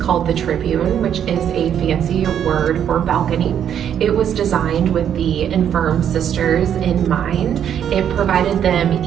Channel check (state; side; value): quieter; left; 9.2 dB